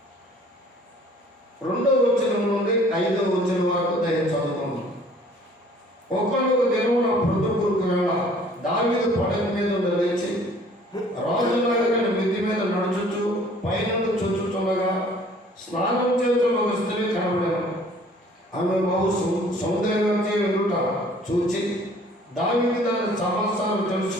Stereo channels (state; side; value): normal; both; correlation 0.54